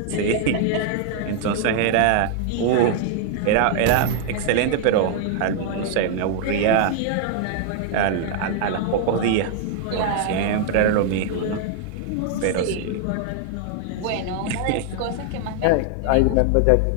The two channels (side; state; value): both; different; correlation 0.00